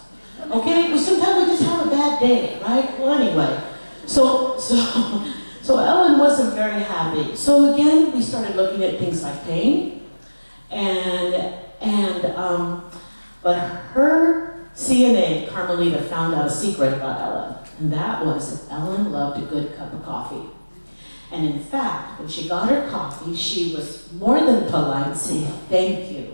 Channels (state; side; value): inverted; both; correlation -1.00